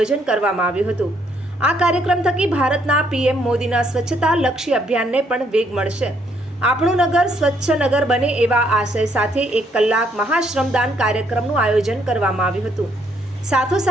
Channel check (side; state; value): both; normal; correlation 0.70